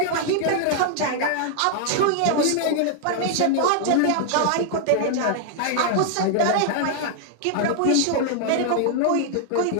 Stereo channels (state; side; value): different; both; correlation 0.00